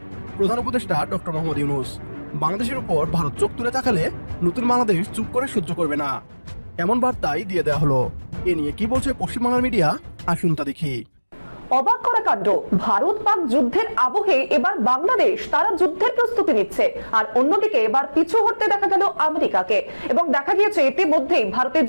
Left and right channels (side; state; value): both; inverted; correlation -1.00